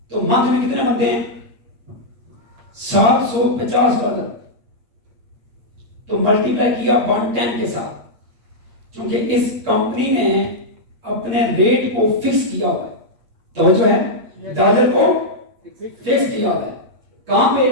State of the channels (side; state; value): left; late; 8.9 ms